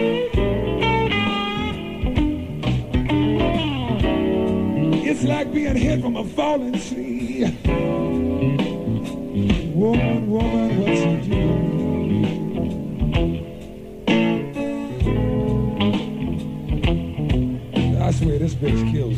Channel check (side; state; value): both; identical; correlation 1.00